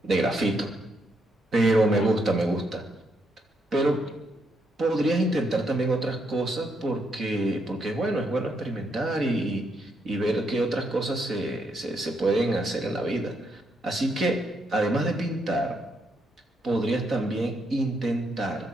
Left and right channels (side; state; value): both; normal; correlation 0.77